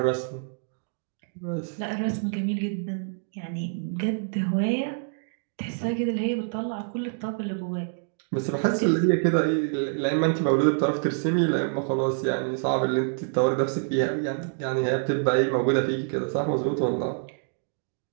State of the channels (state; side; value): silent; left; digital silence